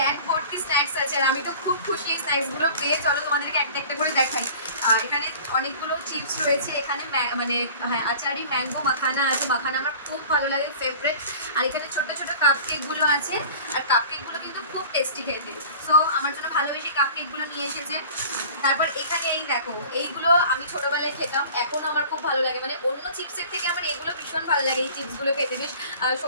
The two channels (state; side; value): inverted; both; correlation -0.43